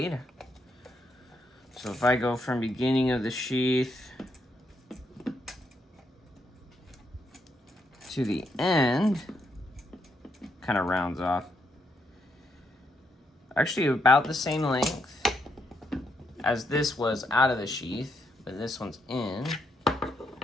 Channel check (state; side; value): normal; both; correlation 0.78